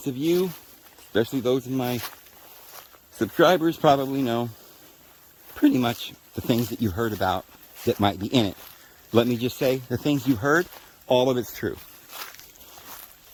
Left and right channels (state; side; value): identical; both; correlation 1.00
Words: of you, especially those of my subscribers, probably know pretty much the things that you heard about that might be in it. Let me just say, the things you heard, all of it's true.